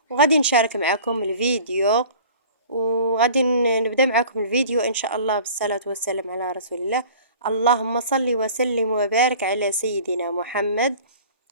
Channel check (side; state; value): both; inverted; correlation -0.45